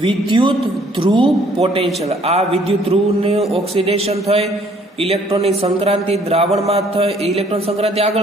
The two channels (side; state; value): both; normal; correlation 0.61